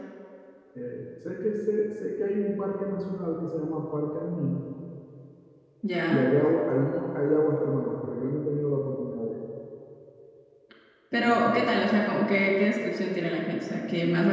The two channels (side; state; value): both; identical; correlation 1.00